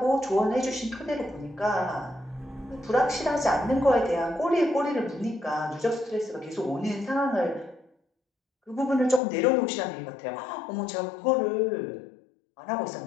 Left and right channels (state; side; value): drops out; right; at 9.2 s